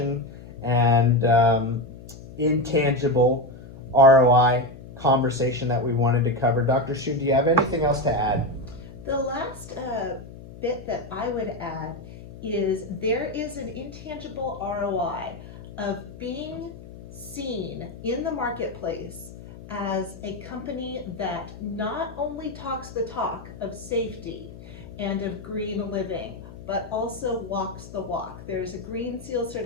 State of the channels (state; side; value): noise; left; hum, 16 dB below the sound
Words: and intangible ROI conversation that we wanted to cover. Dr. Shu, do you have anything else to add? The last bit that I would add is there is an intangible ROI of being seen in the marketplace as a company that not only talks the talk of safety and of green living, but also walks the walk. There's a Green Seal